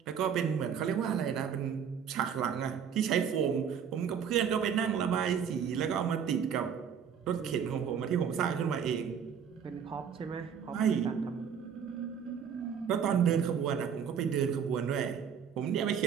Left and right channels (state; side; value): quieter; left; 7.6 dB